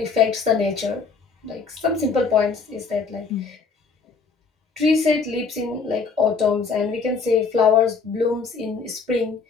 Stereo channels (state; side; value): quieter; right; 5.0 dB